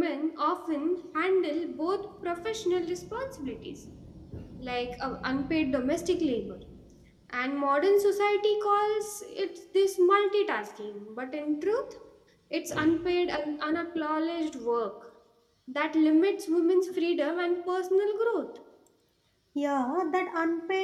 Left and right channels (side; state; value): both; identical; correlation 1.00